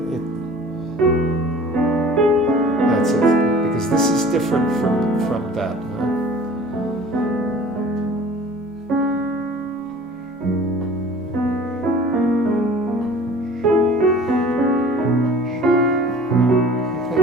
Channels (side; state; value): both; normal; correlation 0.45